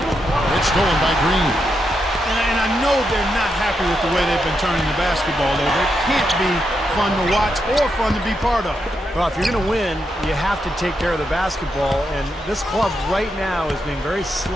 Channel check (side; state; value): both; normal; correlation 0.83